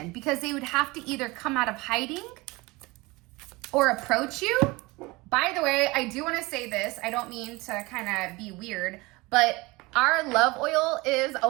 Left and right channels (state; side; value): quieter; left; 23.0 dB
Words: because they would have to either come out of hiding or approach you. By the way, I do want to say this. I don't mean to kind of be weird, but our love oil is